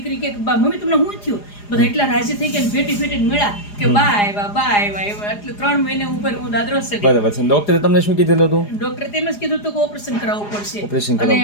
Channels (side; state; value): right; late; 4.9 ms